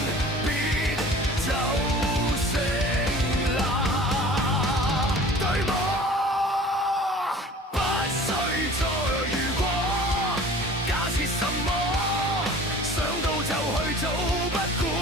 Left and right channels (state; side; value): normal; both; correlation 0.44